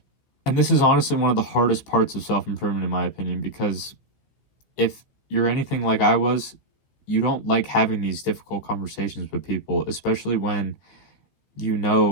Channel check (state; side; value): late; right; 15 ms